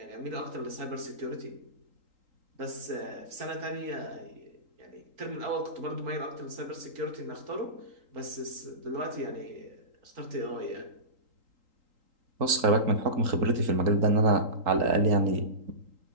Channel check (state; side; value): late; left; 3.8 ms